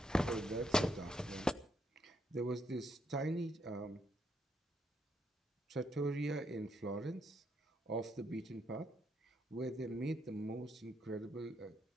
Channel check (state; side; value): normal; both; correlation 0.76